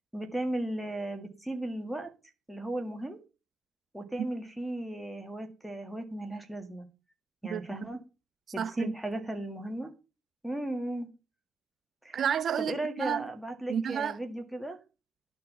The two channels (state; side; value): quieter; left; 3.4 dB